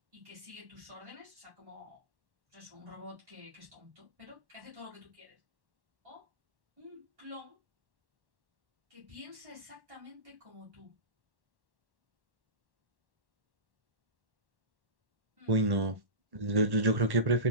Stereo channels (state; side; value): late; left; 1.1 ms